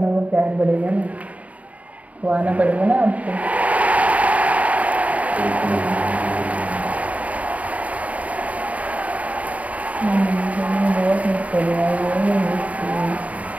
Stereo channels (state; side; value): late; left; 0.069 ms